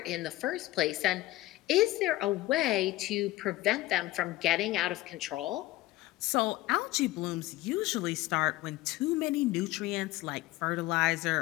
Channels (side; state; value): right; quieter; 17.4 dB